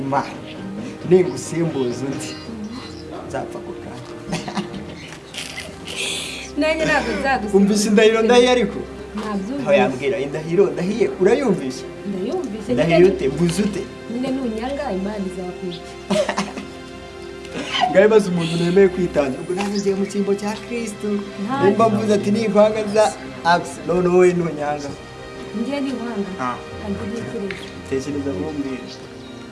Ningusimbuza undi nzapfa kukana. Nanjye ntabwo nzagusimbuza. Umvise indahiro ndahiye ariko? Ntabyo. Aho yambwira indahiro ndahiye urayumvise? Ndayumvise. Ndahiye ute mbuze ute? Nyine nunyanga Imana izakwica. Ngaye baza umuntu nemeye kwitanga. Ubwo nanjye ngiye mu cyimbo cya Kristo. Nimba mvuze ati nikwanga za axe none wowe nunyanga. Ngiye niwanga. Kandi ntekereza. Tekereza mumbwire.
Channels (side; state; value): both; identical; correlation 1.00